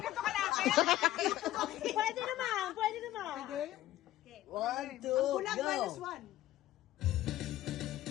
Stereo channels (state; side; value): quieter; right; 14.7 dB